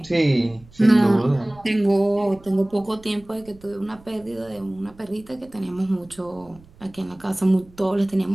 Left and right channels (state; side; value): noise; right; rumble, 25 dB below the sound